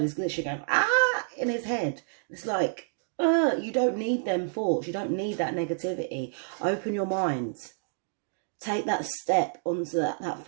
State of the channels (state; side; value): silent; left; digital silence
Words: is literally going, ah, in his head. It's like, you don't need them thoughts. You don't need that negativity. Open your mind. Take that step onto that